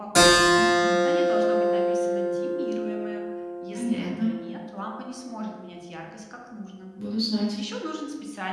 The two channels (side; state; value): both; identical; correlation 1.00